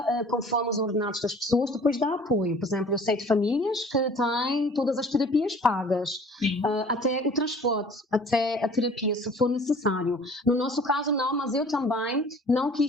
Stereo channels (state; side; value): normal; both; correlation 0.50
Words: conforme os ordenados das pessoas, depois dá apoio. Por exemplo, eu sei de famílias que têm todas as terapias pagas, até o transporte, até a terapia, se for necessário. No nosso caso, não, mas eu também não